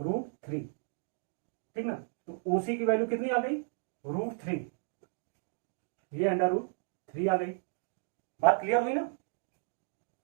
ठीक ना। तो ओसी की वैल्यू कितनी आ गई, √3, ये अंडर रूट 3 आ गई। बात क्लियर हुई ना।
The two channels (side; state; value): left; silent; digital silence